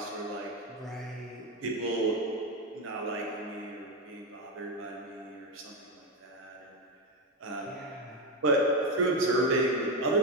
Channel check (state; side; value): normal; both; correlation 0.11